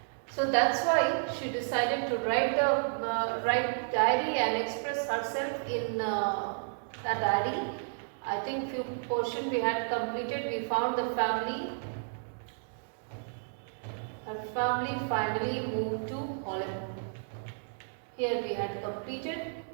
So that's why she decided to write diary and express herself in a diary. I think few portion we had completed. We found the family. Her family finally moved to Holland. Here we had completed.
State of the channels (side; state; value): left; silent; digital silence